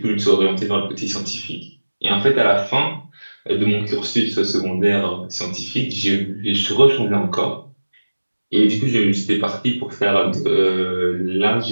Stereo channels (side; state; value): both; inverted; correlation -1.00